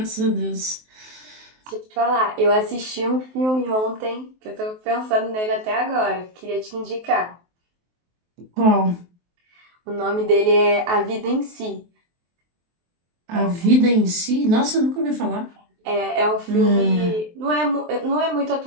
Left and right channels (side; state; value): left; late; 23 ms